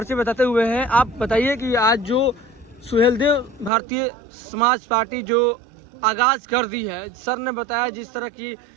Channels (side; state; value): left; drops out; at 3.7 s